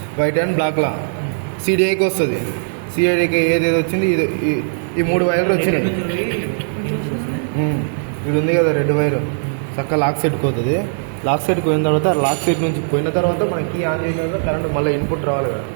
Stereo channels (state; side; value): silent; left; digital silence